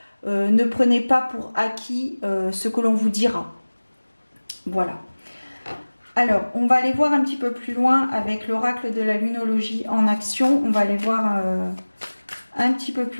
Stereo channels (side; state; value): both; inverted; correlation -1.00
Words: Ne prenez pas pour acquis ce que l'on vous dira. Voilà. Alors, on va aller voir un petit peu plus loin avec l'oracle de la lunologie en action. On va aller voir un petit peu